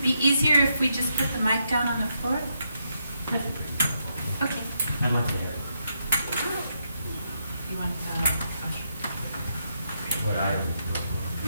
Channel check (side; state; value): both; inverted; correlation -0.81